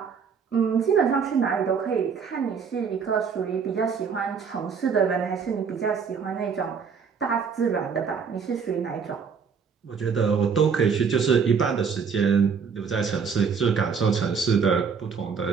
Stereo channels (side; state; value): left; quieter; 6.1 dB